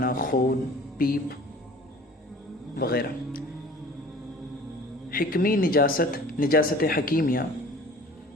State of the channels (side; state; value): both; normal; correlation 0.46